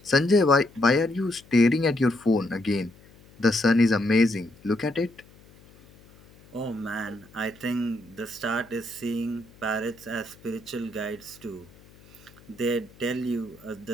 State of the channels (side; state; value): left; noise; hum, 25 dB below the sound